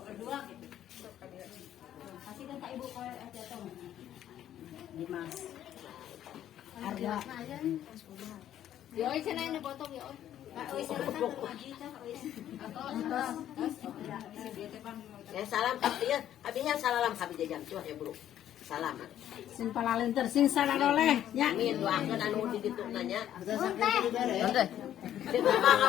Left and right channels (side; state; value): right; quieter; 11.3 dB